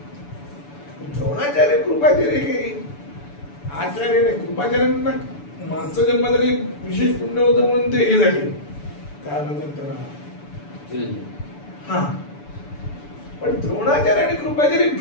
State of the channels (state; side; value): late; right; 6.9 ms